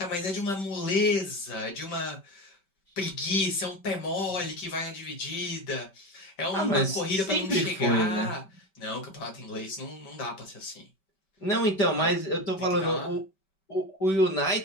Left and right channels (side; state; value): right; late; 5.2 ms